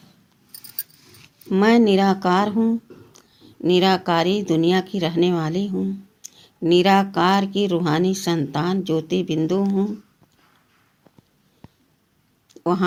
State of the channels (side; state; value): both; identical; correlation 1.00